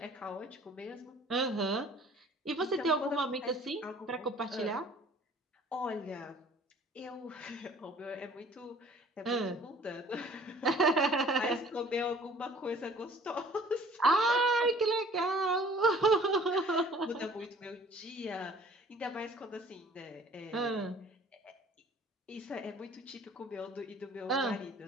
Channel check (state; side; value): normal; both; correlation 0.52